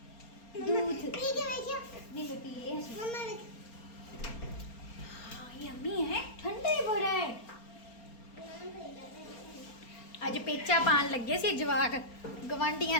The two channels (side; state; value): right; late; 4.3 ms